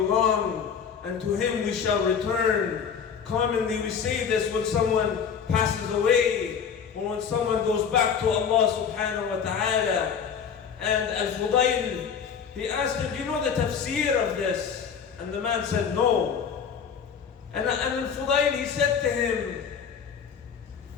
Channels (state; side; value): quieter; right; 7.0 dB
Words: and to Him we shall return. Commonly we say this when someone passes away, or when someone goes back to Allah subhanahu wa ta'ala. And Al-Fudayl, he asked him, do you know the tafsir of this? And the man said, no. And Al-Fudayl, he said to him,